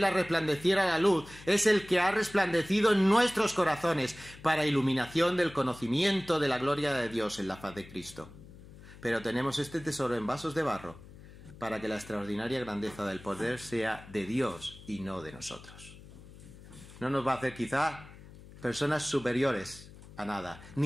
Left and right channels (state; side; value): noise; left; hum, 19 dB below the sound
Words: resplandeciera la luz, es el que ha resplandecido en nuestros corazones para iluminación del conocimiento de la gloria de Dios en la faz de Cristo. Pero tenemos este tesoro en vasos de barro, para que la extraordinaria grandeza del poder sea de Dios y no de nosotros. No nos va a hacer quizá personas superiores a nada,